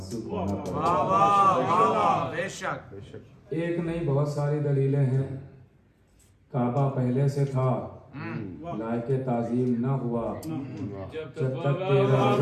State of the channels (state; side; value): identical; both; correlation 1.00